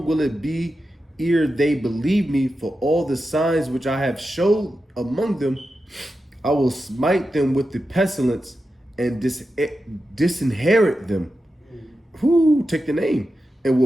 will it be ere they believe me? For all the signs which I have showed among them, I will smite them with the pestilence and disinherit them." Who take the name, and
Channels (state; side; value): normal; both; correlation 0.90